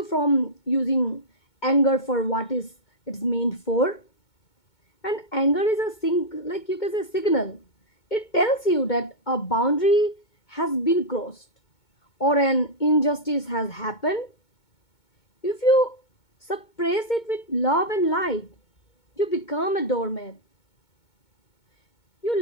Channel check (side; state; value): right; late; 2.2 ms